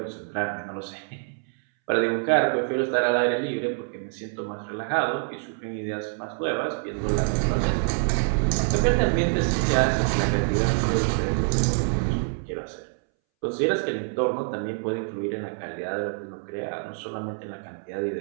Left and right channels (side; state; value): left; silent; 61 dB below the other